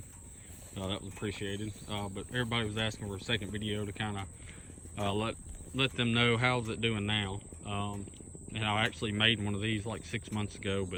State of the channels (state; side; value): identical; both; correlation 1.00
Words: that was appreciated. But everybody was asking for a second video to kind of let them know how's it doing now. And I actually made one of these like 6 months ago,